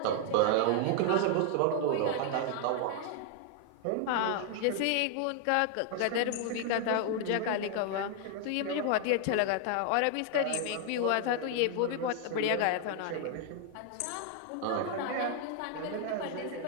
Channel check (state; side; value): different; both; correlation 0.00